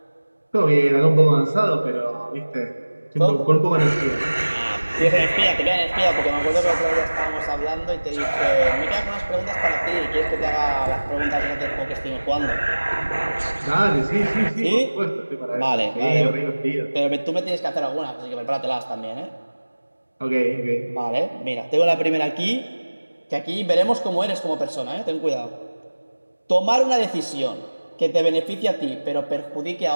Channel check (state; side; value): inverted; both; correlation -1.00